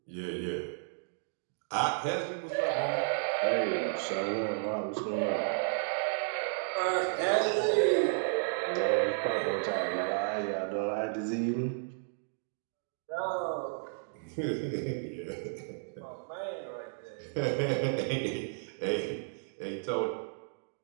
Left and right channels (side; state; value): left; silent; digital silence